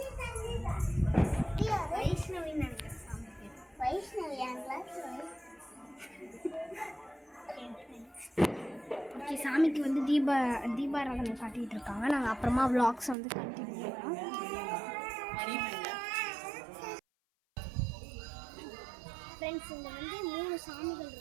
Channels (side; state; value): left; drops out; at 13.2 s